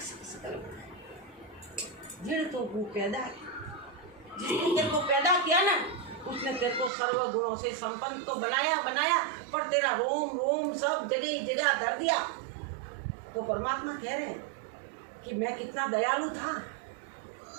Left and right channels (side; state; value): left; drops out; at 6.9 s